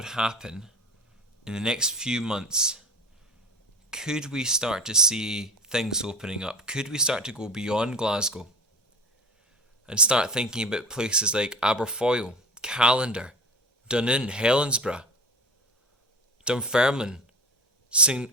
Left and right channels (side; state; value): both; normal; correlation 0.33